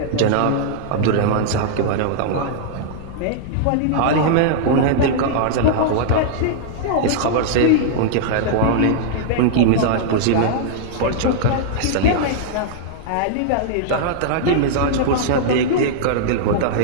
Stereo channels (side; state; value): both; different; correlation -0.01